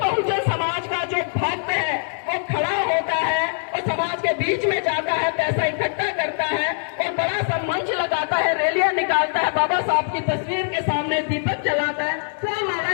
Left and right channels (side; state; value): right; silent; 64 dB below the other